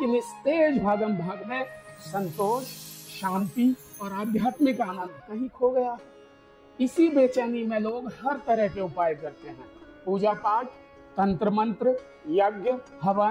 इस तेज भागम भाग में संतोष, शांति और आध्यात्मिक आनंद कहीं खो गया है। इसी बेचैनी में लोग हर तरह के उपाय करते हैं। पूजा पाठ, तंत्र मंत्र, यज्ञ,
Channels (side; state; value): both; identical; correlation 1.00